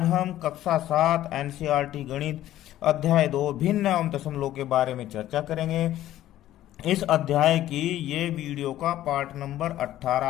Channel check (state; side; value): quieter; right; 13.5 dB